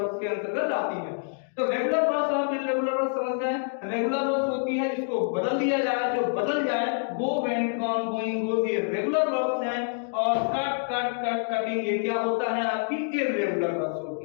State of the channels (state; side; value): silent; right; digital silence